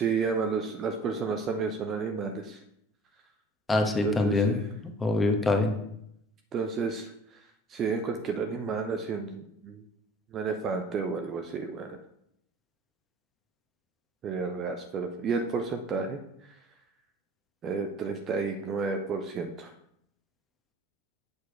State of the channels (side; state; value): both; normal; correlation 0.49